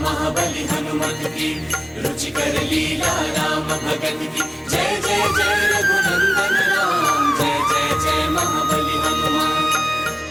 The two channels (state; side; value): identical; both; correlation 1.00